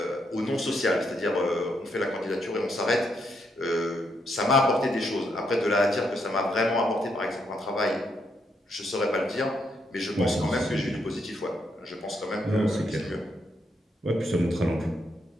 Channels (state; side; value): normal; both; correlation 0.77